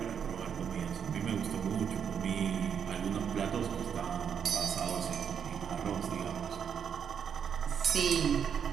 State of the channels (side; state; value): left; quieter; 7.6 dB